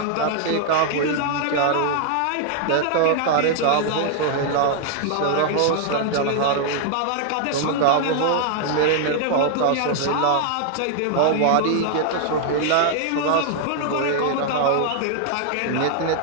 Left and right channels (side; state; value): both; different; correlation 0.00